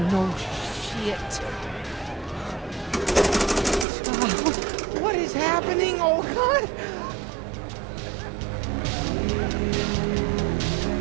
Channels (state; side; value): drops out; left; at 3.9 s